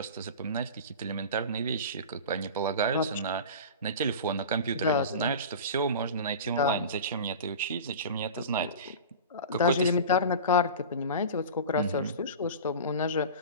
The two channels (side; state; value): both; inverted; correlation -0.32